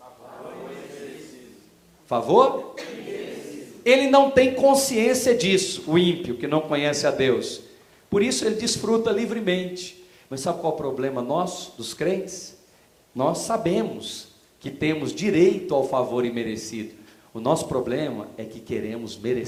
Favor? Ele não tem consciência disso, o ímpio que não conhece a Deus. Por isso ele desfruta livremente. Mas sabe qual é o problema nosso, dos crentes? Nós sabemos que temos direito ao favor imerecido. O nosso problema é que queremos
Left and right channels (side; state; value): both; identical; correlation 1.00